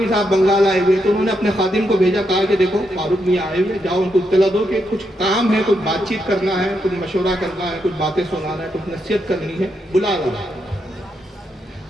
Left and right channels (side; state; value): both; normal; correlation 0.81